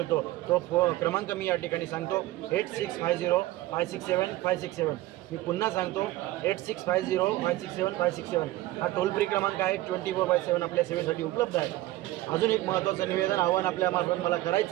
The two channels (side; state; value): left; quieter; 16.7 dB